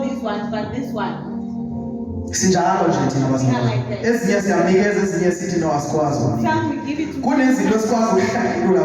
these ones, but this one. Sinjalo nje thina bazalwane. Ezinye siyanikeza, ezinye sithi no asikwazi. Some we give it to. Kunezinto esikwazi ukuhlangulula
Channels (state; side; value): identical; both; correlation 1.00